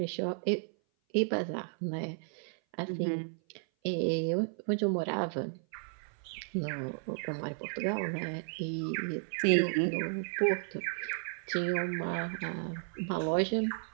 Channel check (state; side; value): silent; left; 55 dB below the other